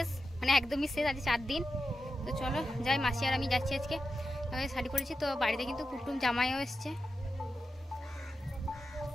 মানে একদমই শেষ, আজ 4 দিন। তো চলো যাই, মাসি আর আমি যাচ্ছি আজকে। শাড়ি পরেছি তো, বাড়িতে কিন্তু কুটুম জামাইও এসছে।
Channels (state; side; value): normal; both; correlation 0.90